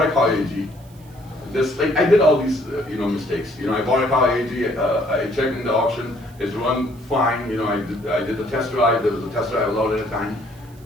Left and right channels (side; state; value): right; noise; hiss, 27 dB below the sound